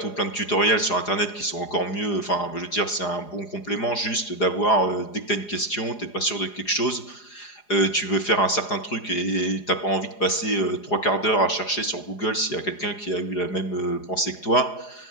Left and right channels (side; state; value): right; late; 4.9 ms